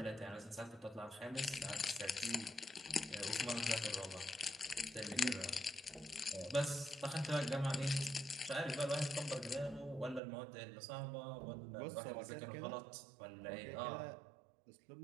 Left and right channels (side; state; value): left; drops out; at 10.2 s